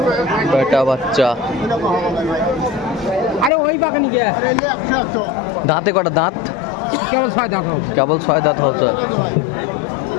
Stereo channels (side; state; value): right; drops out; at 3.5 s